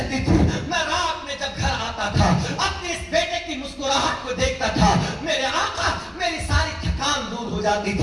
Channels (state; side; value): identical; both; correlation 1.00